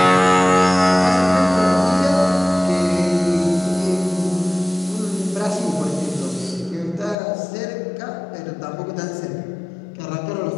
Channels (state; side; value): drops out; right; at 7.2 s